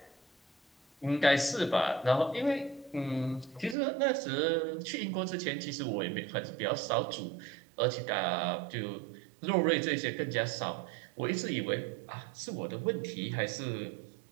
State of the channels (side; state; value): left; drops out; at 3.8 s